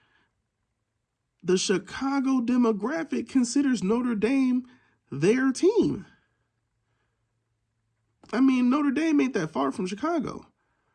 The Chicago demographic considers Notre Dame their team. I mean, Notre Dame ain't that far from Chicago.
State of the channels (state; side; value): identical; both; correlation 1.00